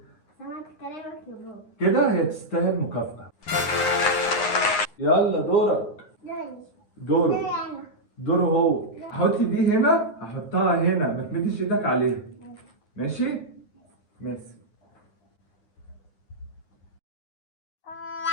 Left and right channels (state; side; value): late; right; 9.7 ms